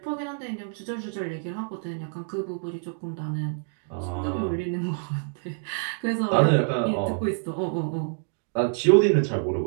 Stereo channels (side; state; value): left; silent; 60 dB below the other